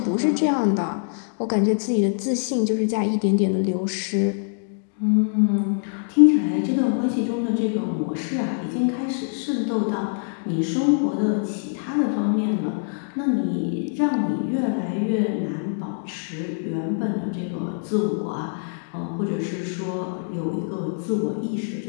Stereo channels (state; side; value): silent; right; digital silence